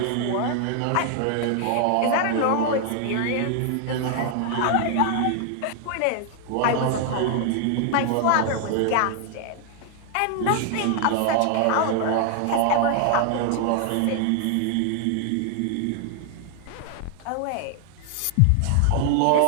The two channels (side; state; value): both; different; correlation 0.00